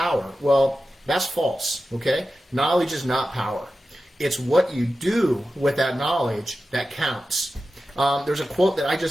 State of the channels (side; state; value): both; normal; correlation 0.93